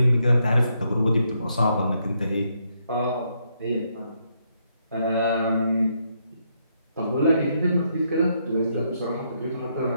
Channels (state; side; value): inverted; both; correlation -0.76